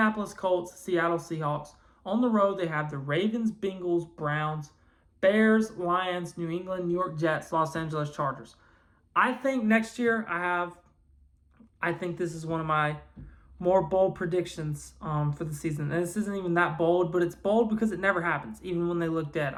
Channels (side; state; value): both; identical; correlation 1.00